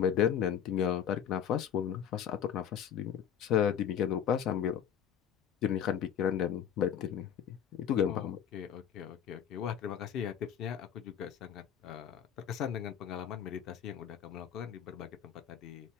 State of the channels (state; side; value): quieter; right; 8.9 dB